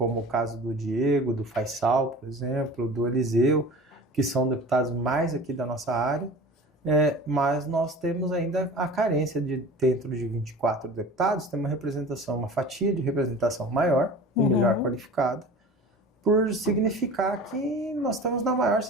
o caso do Diego, do Faisal, por exemplo, do Eliseu, que são deputados mais aqui da nossa área, mas nós temos ainda a carência de, dentro de 24 deputados, ter uma representação, uma fatia de representação maior e melhor qualificada, por significar que nós estamos na maior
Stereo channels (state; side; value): normal; both; correlation 0.38